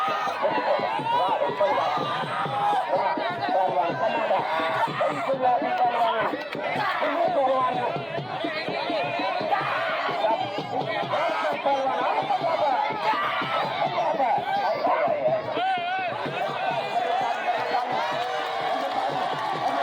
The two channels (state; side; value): identical; both; correlation 1.00